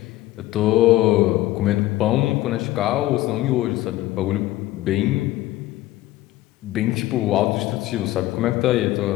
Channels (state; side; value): quieter; right; 16.3 dB